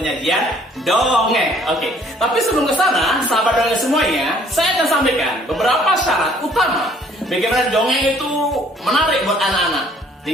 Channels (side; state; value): both; normal; correlation 0.59